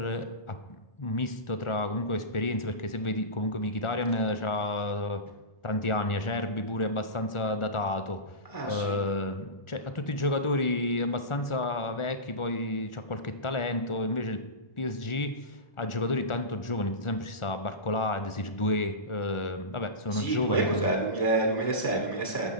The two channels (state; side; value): late; right; 1.4 ms